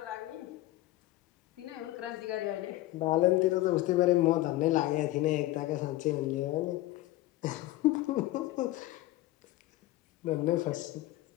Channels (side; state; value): right; quieter; 17.0 dB